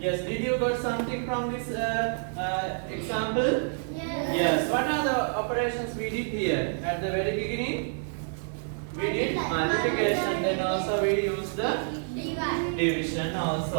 did you got something from this example? Yes. What are the operations we did here at the very beginning? We did multiplication. Then also we used the division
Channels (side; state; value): left; silent; digital silence